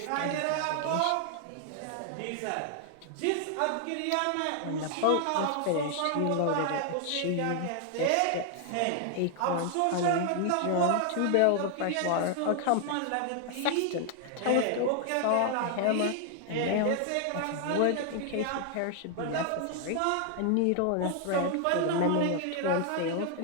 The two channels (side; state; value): both; different; correlation 0.00